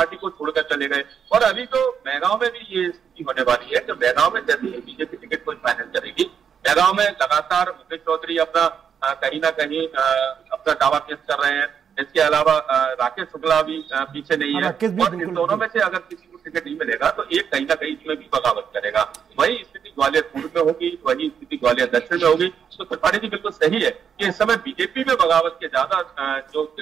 को छोड़कर चले गए। और अभी तो मैगांव में भी ये स्थिति होने वाली है कि मैगांव में जैसे ही बीजेपी टिकट को फाइनल करेगी, मैगांव में लगातार मुकेश चौधरी अपना कहीं ना कहीं अपना दावा पेश कर रहे हैं। इसके अलावा राकेश शुक्ला भी पीछे नहीं है, और इन दोनों में से अगर किसी को टिकट नहीं मिलेगा तो एक कहीं ना कहीं इसमें भी बगावत करेगा। वही स्थिति ग्वालियर पूर्व में होगी, वही स्थिति ग्वालियर दक्षिण में होगी। तो त्रिपाठी जी बिल्कुल सही है कि इस समय बीजेपी में बगावत के ज्यादा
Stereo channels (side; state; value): left; quieter; 7.6 dB